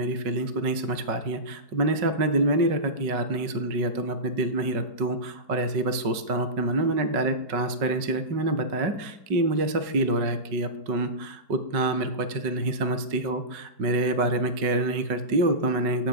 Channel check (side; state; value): left; late; 5.3 ms